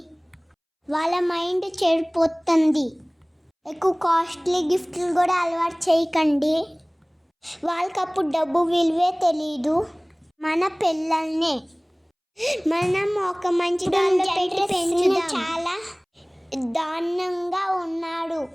వాళ్ళ మైండ్ చెడిపోతుంది. ఎక్కువ కాస్ట్లీ గిఫ్ట్లు కూడా అలవాటు చేయకండి, వాళ్ళకి అప్పుడు డబ్బు విలువే తెలీదు. మన పిల్లల్ని మనం ఒక మంచి దానిలో పెట్టి పెంచుదాం. చాలా దారుణంగా ఉన్నాడు.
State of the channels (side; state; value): both; identical; correlation 1.00